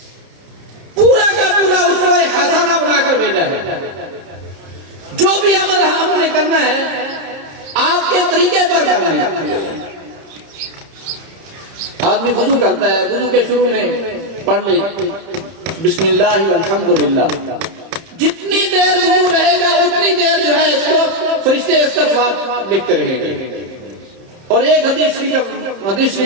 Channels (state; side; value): late; left; 31 ms